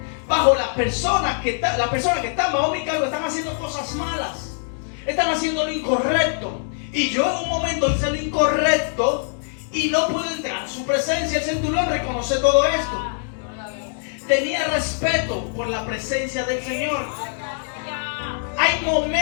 bajo las personas que están bajo mi cargo, están haciendo cosas malas, están haciendo lo incorrecto, y yo en un momento hice lo incorrecto y no puedo entrar a su presencia. El centurión reconoce todo esto. Tenía respeto por la presencia del Señor. Hay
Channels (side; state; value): right; silent; digital silence